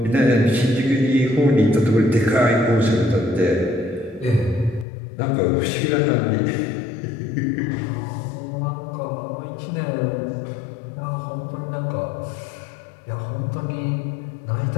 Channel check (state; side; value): drops out; right; at 4.9 s